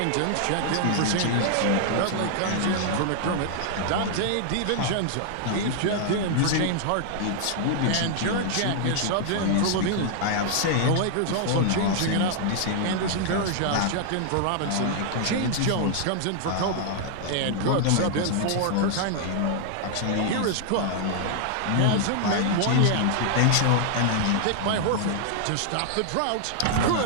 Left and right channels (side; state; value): both; different; correlation 0.00